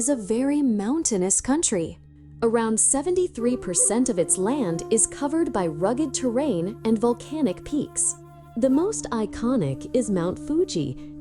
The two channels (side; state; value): both; identical; correlation 1.00